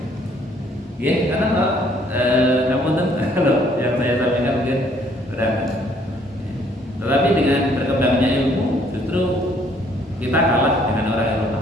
Karena kalau yang saya sampaikan mungkin berat. Tetapi dengan berkembangnya ilmu, justru kita kalah dengan orang Eropa.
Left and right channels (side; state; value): both; normal; correlation 0.63